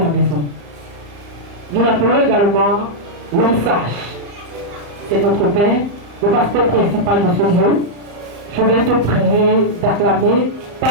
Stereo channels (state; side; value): late; left; 34 ms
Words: maison. Nous l'appelons également l'homme sage. C'est notre Père, le pasteur principal de ce lieu. Je vais te prier d'acclamer,